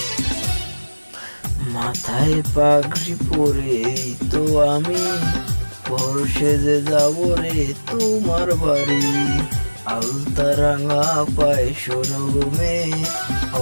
পাগড়ি পরে তো আমি বড় সেজে যাব রে তোমার বাড়ি। আলতা রাঙা পায়ে শোনো মেয়ে,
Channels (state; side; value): inverted; both; correlation -1.00